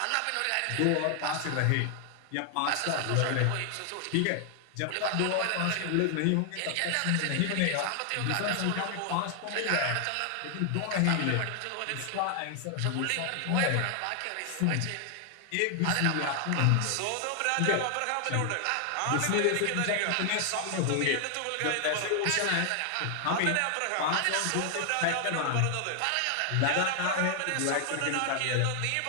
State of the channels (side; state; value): both; different; correlation 0.00